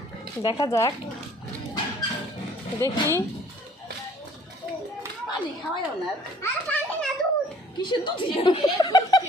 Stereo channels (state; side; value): normal; both; correlation 0.56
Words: দেখা যাক দেখি পানি খাওয়াও না আর পানি না দুধ কিসের দুধ